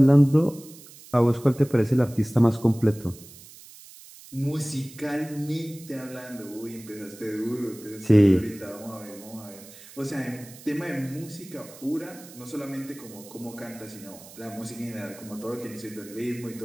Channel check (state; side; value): noise; right; hiss, 19 dB below the sound